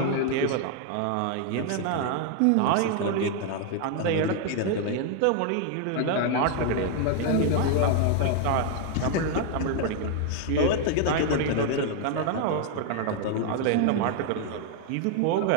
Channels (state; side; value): different; both; correlation 0.00